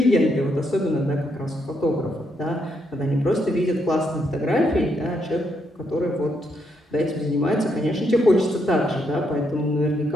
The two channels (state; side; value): normal; both; correlation 0.77